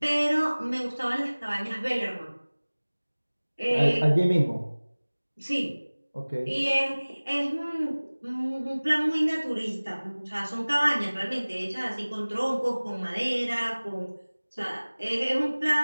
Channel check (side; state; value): both; inverted; correlation -1.00